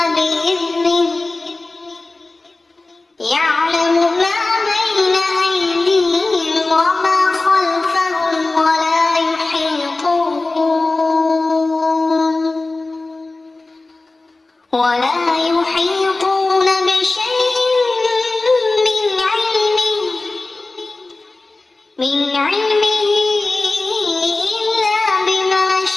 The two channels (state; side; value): quieter; right; 3.2 dB